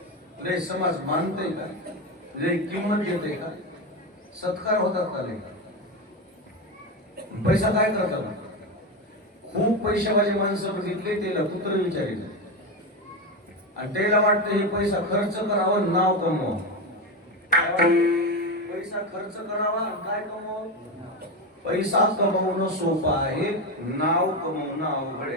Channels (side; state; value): both; normal; correlation 0.15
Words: लय समाज मानते का, लय किंमत देते का, सत्कार होतात का लय. पैसा काय करतात. खूप पैशावाले माणसं बघितले त्याला कुत्र विचारिले आणि त्याला वाटतं हे पैसा खर्च करावं नाव कमवावं. पैसा खर्च करावा काय कमवावं. पैसा कमवणं सोपं आहे, नाव कमवणं अवघड